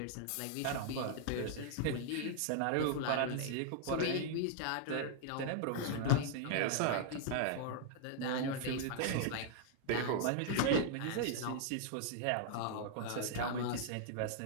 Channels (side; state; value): both; different; correlation -0.01